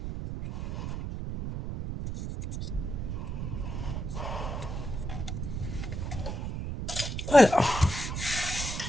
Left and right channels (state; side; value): noise; right; rumble, 4 dB below the sound